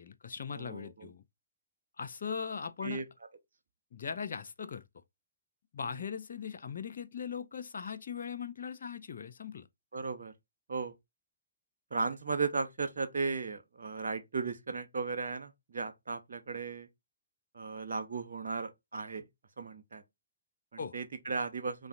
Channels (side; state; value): both; inverted; correlation -0.73